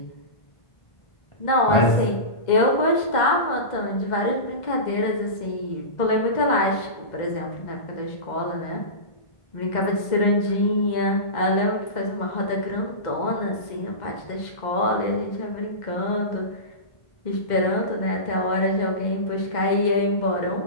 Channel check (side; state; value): right; late; 2.0 ms